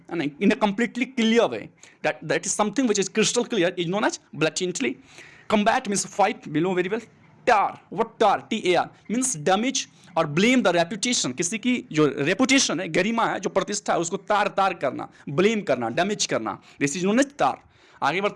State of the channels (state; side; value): identical; both; correlation 1.00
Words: है ना, in a completely clear way, that is something which is crystal clear is known as blatantly. Combat means fight, we know very well. tar, what tar, TAR means damage और blame the reputation, किसी की जो reputation है, गरिमा है, जो प्रतिष्ठा है, उसको तार करना, ब्लेम करना, डैमेज करना, दिस इज नोन एज तार. आगे